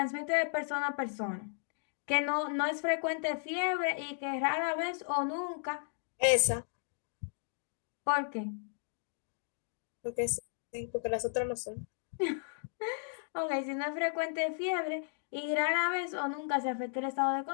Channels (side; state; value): right; silent; digital silence